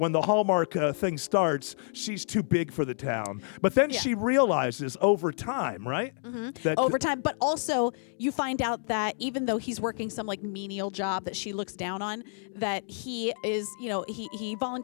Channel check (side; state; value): right; silent; digital silence